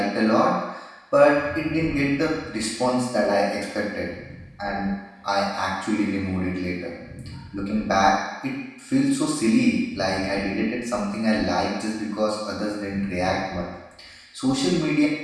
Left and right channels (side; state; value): both; identical; correlation 1.00